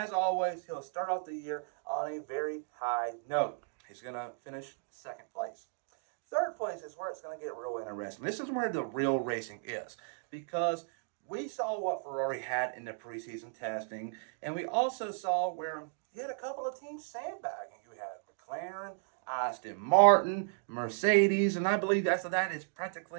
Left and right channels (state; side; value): silent; left; digital silence